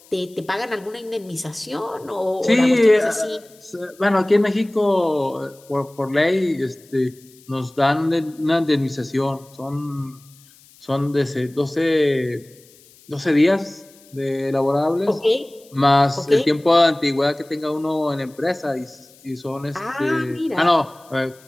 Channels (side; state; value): left; noise; hiss, 27 dB below the sound